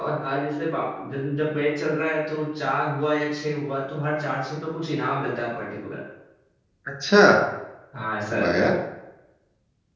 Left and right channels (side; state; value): both; identical; correlation 1.00